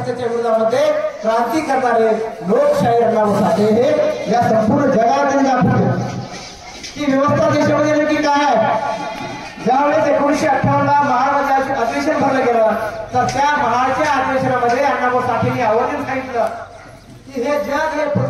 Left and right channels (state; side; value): identical; both; correlation 1.00